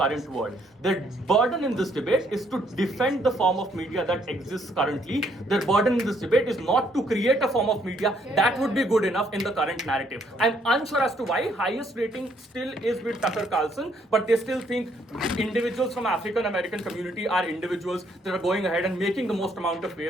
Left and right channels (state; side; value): normal; both; correlation 0.69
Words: world. Their burden in this debate is to defend the form of media that exists currently. Their burden in this debate is not to create a form of media that would be good enough in the current narrative. I'm unsure as to why highest rating still is with Tucker Carlson, but they still think individuals from African American community are individuals that are going ahead and making the most amount of